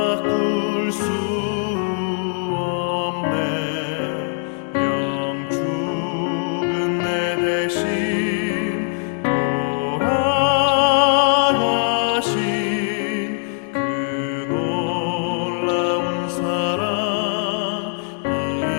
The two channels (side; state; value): right; silent; 62 dB below the other